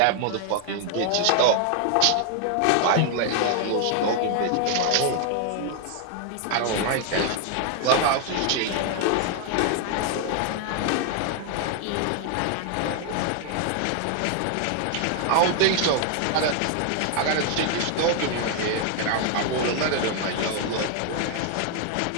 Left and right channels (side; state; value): both; different; correlation 0.00